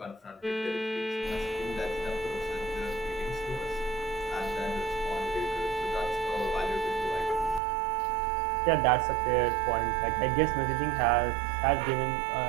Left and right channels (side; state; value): left; drops out; at 7.6 s